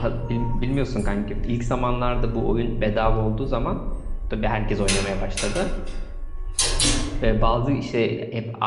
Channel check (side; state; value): both; identical; correlation 1.00